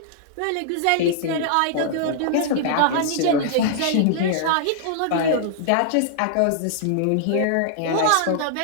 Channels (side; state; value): both; different; correlation -0.01